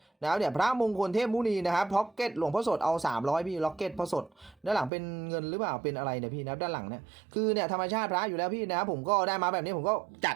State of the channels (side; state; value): left; drops out; at 4.9 s